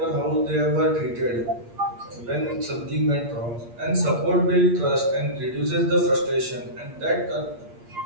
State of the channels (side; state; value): left; late; 8.5 ms